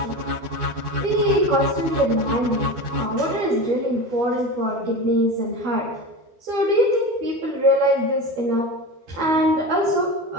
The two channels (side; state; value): left; late; 12 ms